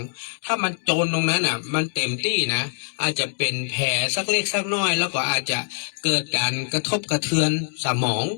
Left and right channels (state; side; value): silent; right; digital silence